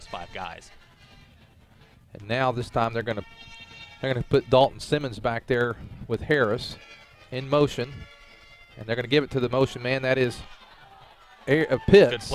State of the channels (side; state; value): both; identical; correlation 1.00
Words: 5 guys. And now this time they're going to put Dalton Simmons back there with Harris in motion. And they're going to give it to the motion man. That is Pitts. Good